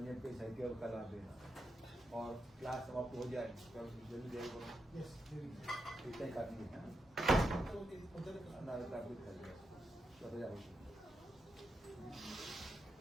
पे साहित्य का लाभ देना। और क्लास समाप्त हो जाए तो जल्दी जाएगा, इतना ही काफी है ना,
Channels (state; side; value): normal; both; correlation 0.85